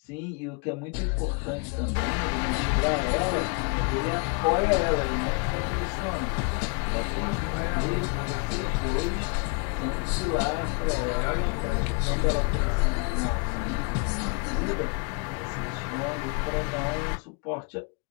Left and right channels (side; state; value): right; quieter; 33.7 dB